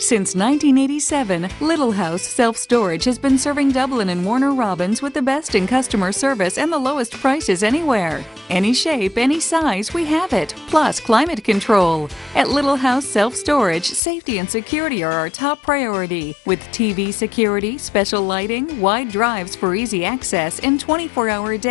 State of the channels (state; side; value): drops out; right; at 14.0 s